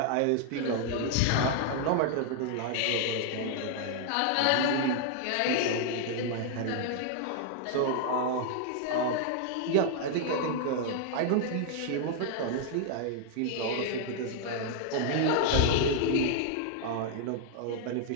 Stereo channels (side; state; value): both; different; correlation 0.00